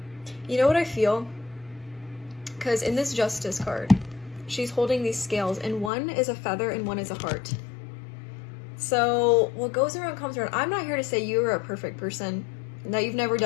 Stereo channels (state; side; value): drops out; right; at 5.9 s